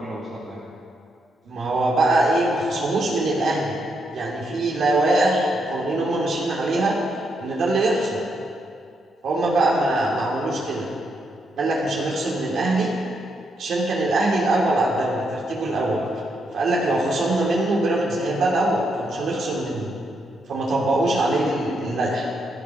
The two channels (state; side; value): normal; both; correlation 0.79